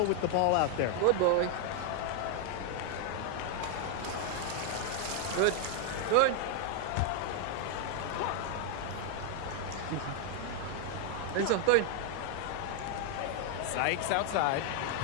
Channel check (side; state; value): both; different; correlation 0.00